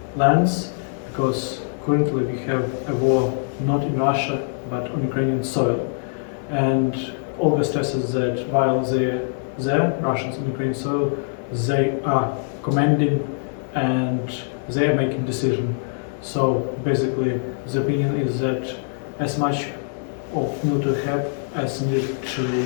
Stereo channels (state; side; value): silent; right; digital silence